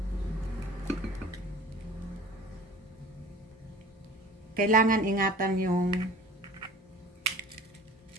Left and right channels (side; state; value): both; normal; correlation 0.43